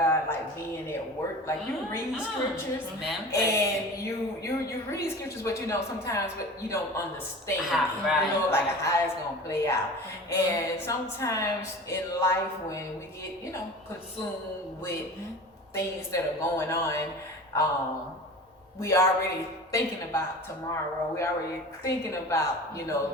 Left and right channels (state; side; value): normal; both; correlation 0.36